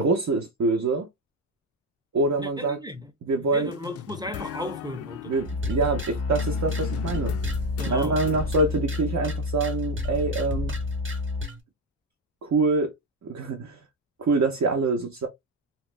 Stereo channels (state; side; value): normal; both; correlation 0.08